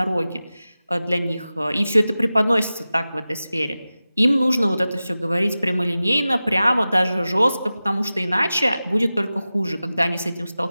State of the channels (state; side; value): inverted; both; correlation -0.95